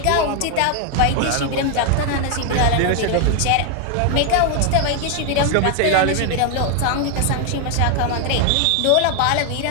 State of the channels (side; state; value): both; different; correlation 0.00